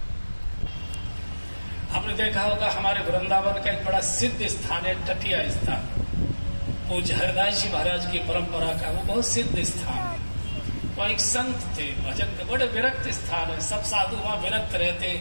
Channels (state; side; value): inverted; both; correlation -1.00